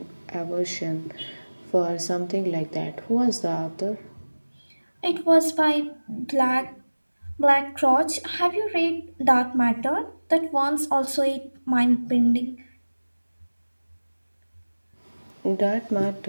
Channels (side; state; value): both; inverted; correlation -1.00